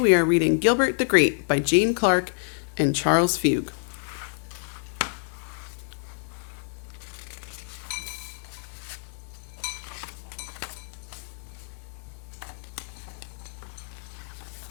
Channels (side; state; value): right; silent; digital silence